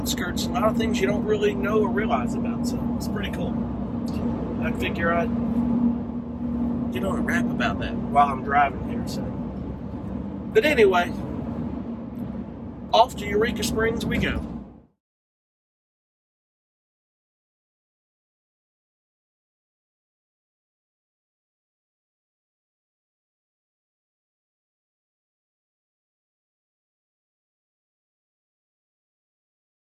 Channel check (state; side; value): identical; both; correlation 1.00